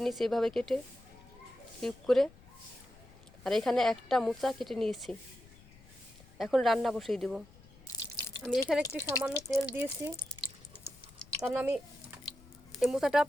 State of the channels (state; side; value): noise; left; rumble, 23 dB below the sound